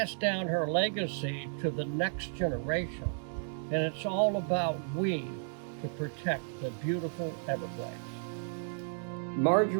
down her legacy to the next generation, and it's all about we to protect the beautiful Everglades.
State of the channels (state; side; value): silent; left; digital silence